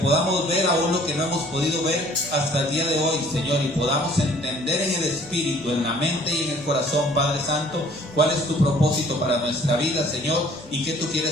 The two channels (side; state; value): both; normal; correlation 0.55